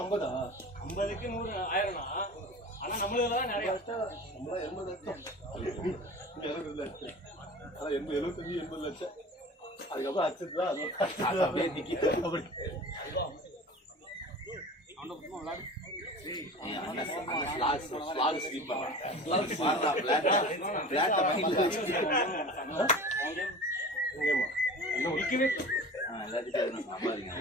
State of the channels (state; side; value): normal; both; correlation 0.37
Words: 50க்கு 100 ஆயிரம்னா ஆனா நம்மளுக்கு தான் நிறைய நம்மளா 80 லட்சம். 70 லட்சம். ஆனா 75 லட்சம். அதுக்கப்புறம் அக்செப்ட் தான் அது அப்படியே நிக்கிது. அப்படி ஸ்லாக் ஸ்லீப் பண்ணலாம். மாறலாம் பிளாட் மைண்ட்ல வச்சுக்கிட்டு. எங்கேம்மா? எல்லாத்தையும் சம்பாதிங்க.